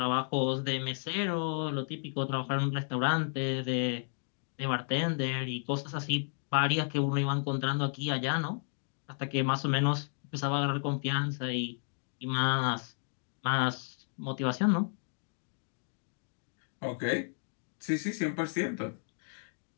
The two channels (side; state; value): right; silent; digital silence